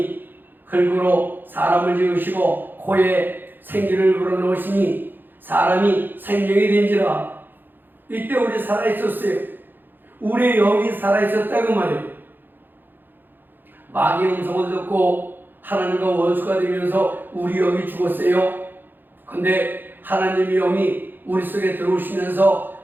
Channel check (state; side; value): late; left; 0.093 ms